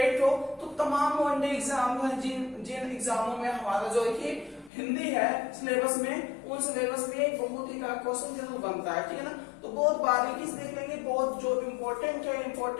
हो तो तमाम वनडे एग्जाम है, जिन एग्जामों में हमारा जो है कि हिंदी है सिलेबस में, उन सिलेबस में एक बहुत ही का क्वेश्चन जरूर बनता है, ठीक है ना। तो बहुत बारीकी से देख लेंगे, बहुत जो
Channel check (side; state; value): right; drops out; at 4.7 s